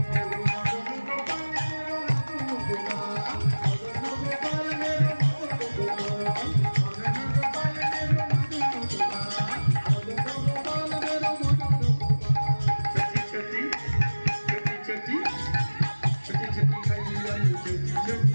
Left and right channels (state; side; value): inverted; both; correlation -1.00